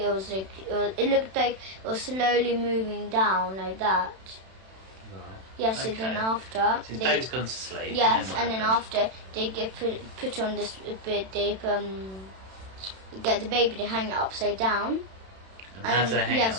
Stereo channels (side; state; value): left; late; 31 ms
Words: looked like it was slowly moving down like that. Right. Yes, Okay. and then after So his baby's gone to sleep. Yes, and and then after they get put on this bit, they get the baby, they hang it upside down. And how do they hang it yes,